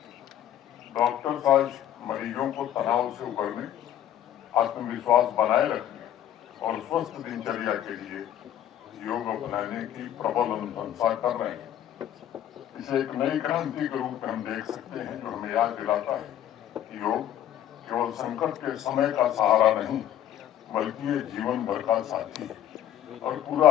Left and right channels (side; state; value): right; quieter; 11.3 dB